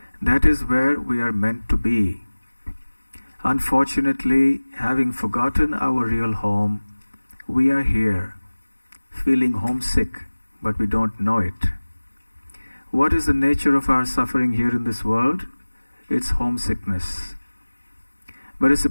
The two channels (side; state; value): both; inverted; correlation -1.00